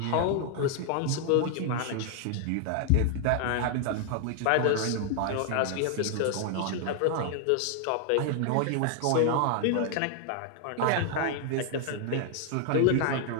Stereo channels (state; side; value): different; both; correlation 0.00